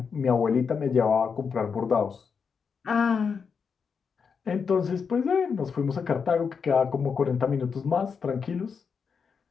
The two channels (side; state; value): right; quieter; 6.0 dB